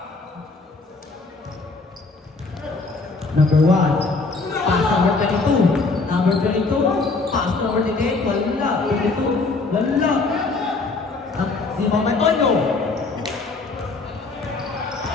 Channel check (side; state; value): right; quieter; 3.8 dB